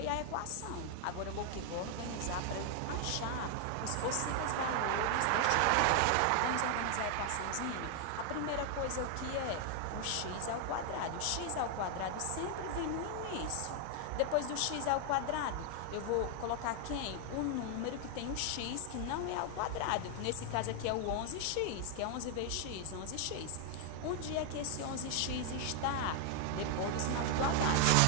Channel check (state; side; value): different; both; correlation 0.00